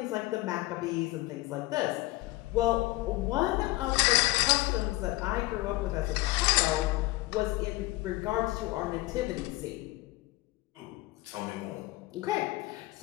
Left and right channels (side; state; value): right; quieter; 19.6 dB